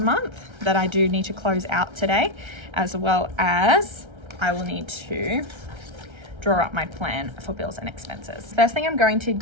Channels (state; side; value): late; left; 1.3 ms